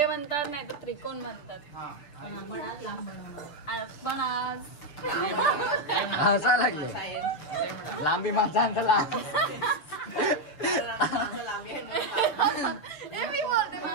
म्हणतात, नाही तर त्रिकोण म्हणतात. पण आज हसा लागले. लांबी माझा लांब. मी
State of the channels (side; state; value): right; late; 6.7 ms